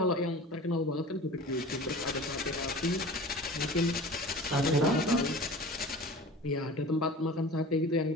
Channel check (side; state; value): both; normal; correlation 0.38